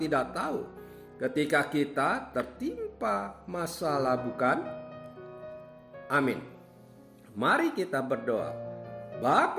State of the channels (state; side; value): identical; both; correlation 1.00